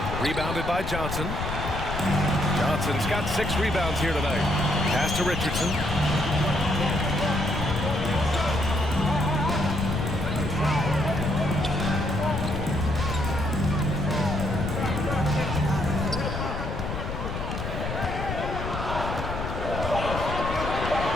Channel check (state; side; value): noise; left; rumble, 5 dB below the sound